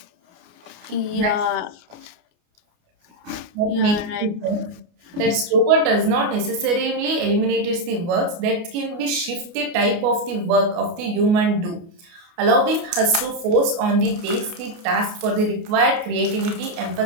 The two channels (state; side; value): late; left; 29 ms